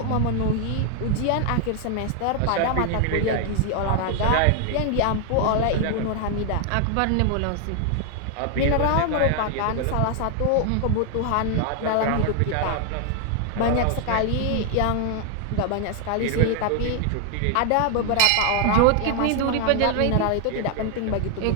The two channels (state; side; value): different; both; correlation 0.00